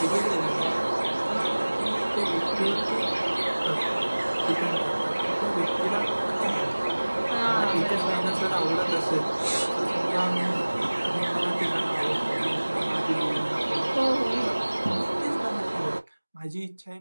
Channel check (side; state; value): both; inverted; correlation -1.00